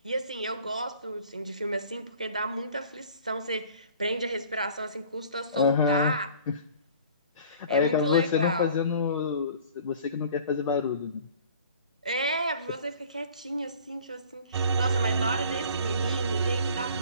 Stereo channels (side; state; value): both; inverted; correlation -0.48